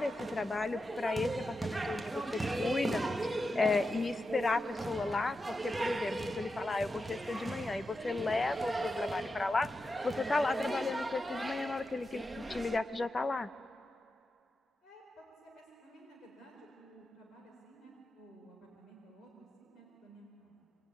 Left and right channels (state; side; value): normal; both; correlation 0.89